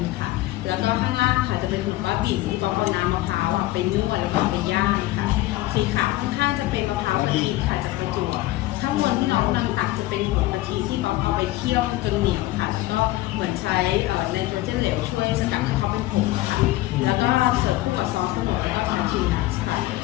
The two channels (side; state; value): right; quieter; 17.2 dB